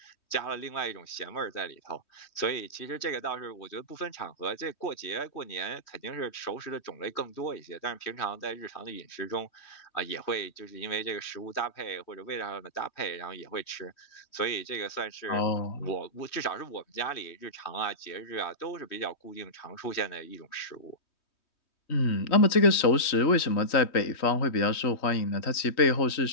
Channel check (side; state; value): right; late; 3.1 ms